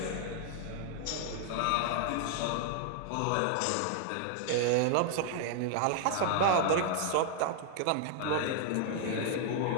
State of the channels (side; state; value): both; different; correlation 0.00